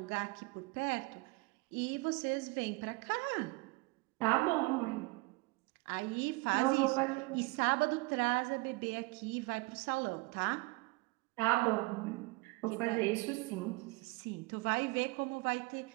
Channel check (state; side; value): quieter; left; 25.1 dB